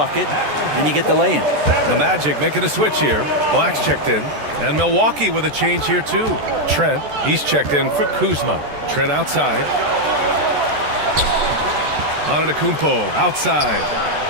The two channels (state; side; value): late; left; 14 ms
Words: and you get the lay-in. The Magic making a switch here. Black's checked in. And Milwaukee with a change here too. Trent, he's checked in for Kuzma. Trent outside. Antetokounmpo outside.